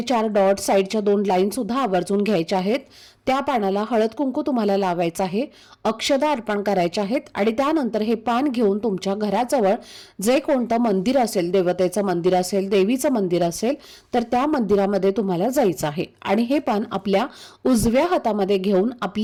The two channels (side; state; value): both; identical; correlation 1.00